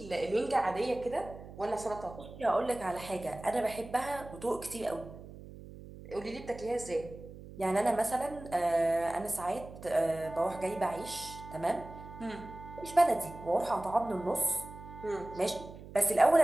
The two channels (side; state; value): right; noise; hum, 15 dB below the sound